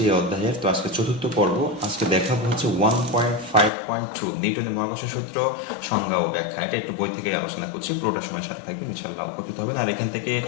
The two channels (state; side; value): drops out; right; at 3.7 s